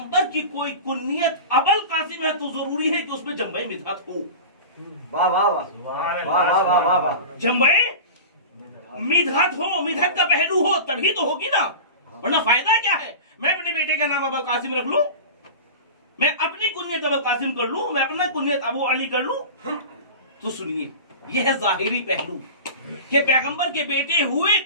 की कोई कुनियत अबुल कासिम है तो जरूरी है कि उसमें जंबे मिदहत हो। वाह वाह वाह वाह वाह वाह वाह, जंबे मिदहत हो, मिदहत का पहलू हो, तभी तो होगी ना, वरना फायदा क्या है? मैं अपने बेटे का नाम अबुल कासिम रख लूं, मैं अपनी कुनियत अबुल कासिम कर लूं, मैं अपना कुनियत अबू अली कर लूं। तो सुनिए, यह है जाहिरी पहलू कि पैगंबर के बेटे हुए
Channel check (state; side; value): inverted; both; correlation -0.31